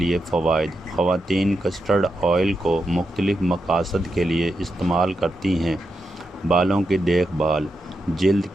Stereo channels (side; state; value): both; normal; correlation 0.85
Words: فوائد: خواتین کسٹرڈ آئل کو مختلف مقاصد کے لیے استعمال کرتی ہیں۔ بالوں کی دیکھ بھال، جلد